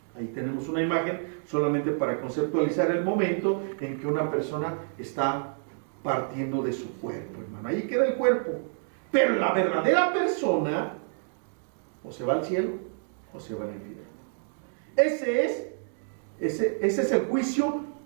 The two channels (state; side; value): silent; left; digital silence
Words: ahí tenemos una imagen solamente para conceptualizar el momento en que una persona está partiendo de su cuerpo, hermano. Ahí queda el cuerpo. Pero la verdadera persona o se va al cielo o se va al infierno. Ese es el juicio